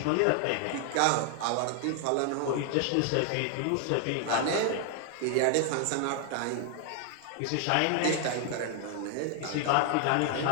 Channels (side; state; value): both; different; correlation 0.00